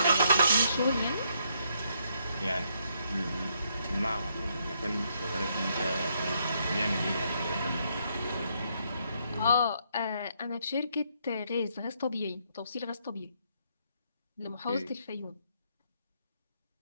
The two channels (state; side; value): inverted; both; correlation -0.73